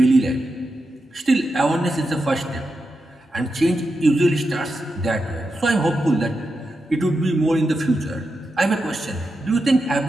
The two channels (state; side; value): normal; both; correlation 0.88